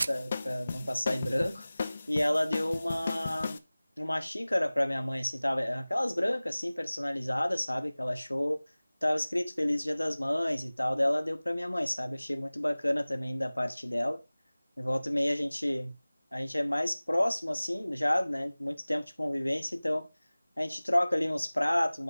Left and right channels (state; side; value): inverted; both; correlation -0.99